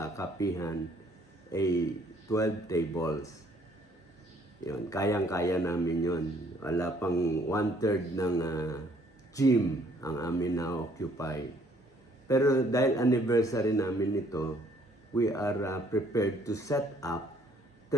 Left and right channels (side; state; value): both; normal; correlation 0.62